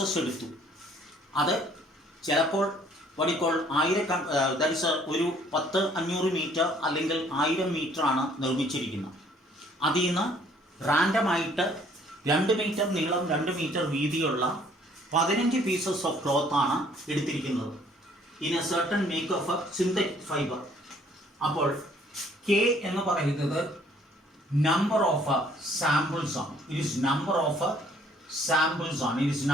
എടുത്തു. അത് ചിലപ്പോൾ വടിക്കോൾ 1000 ഒരു 10-500 മീറ്റർ അല്ലെങ്കിൽ 1000 മീറ്ററാണ് നിർമ്മിച്ചിരിക്കുന്നത്. അതിൽ നിന്ന് റാൻഡമായിട്ട് 2 മീറ്റർ നീളം 2 മീറ്റർ വീതിയുള്ള 15 പീസസ് ഓഫ് ക്ലോത്ത് ആണ് എടുത്തിരിക്കുന്നത്. In a certain make of synthetic fibre. അപ്പോൾ കെ എന്ന് പറയുന്നത് നമ്പർ ഓഫ് സാമ്പിൾസ് ആണ്. It is number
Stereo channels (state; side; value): normal; both; correlation 0.60